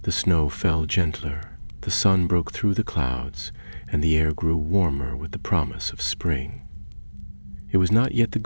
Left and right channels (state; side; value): inverted; both; correlation -1.00